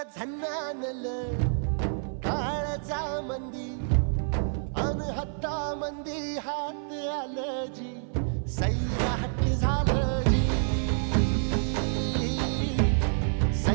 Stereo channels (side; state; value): left; silent; 56 dB below the other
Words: झन्नानल काळजा मंदी अन हत्ता मंदी हात आलं जी सैराट झालं जी